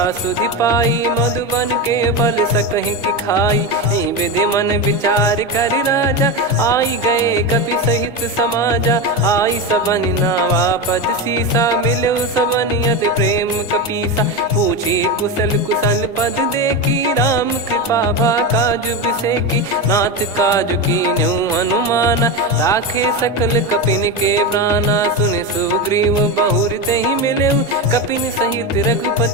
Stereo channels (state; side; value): normal; both; correlation 0.17